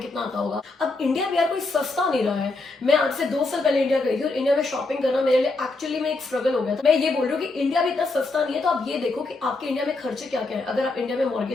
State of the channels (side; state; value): right; quieter; 3.4 dB